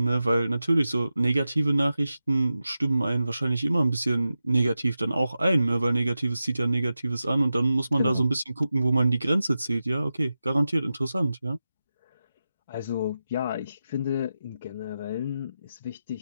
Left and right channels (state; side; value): inverted; both; correlation -0.92